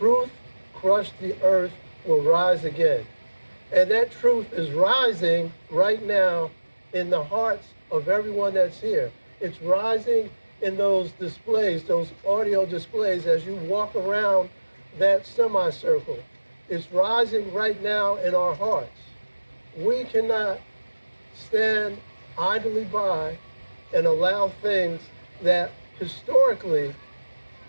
crushed the earth will rise again. And that truth is rising right now in the hearts of everyone that's here. It's rising in those displays, those audio displays as you walk around that semicircle. It's rising right now in our hearts. We cannot stand idly by and allow things that historically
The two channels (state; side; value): inverted; both; correlation -1.00